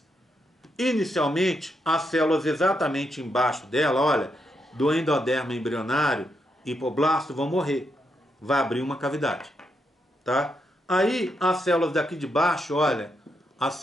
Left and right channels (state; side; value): normal; both; correlation 0.81